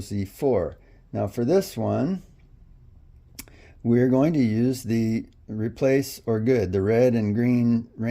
Now for this one, we're going to use the replace or good, the red and green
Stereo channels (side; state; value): both; identical; correlation 1.00